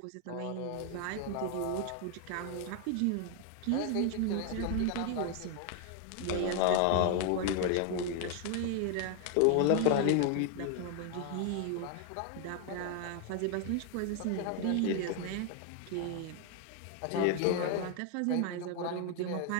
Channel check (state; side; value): different; both; correlation 0.00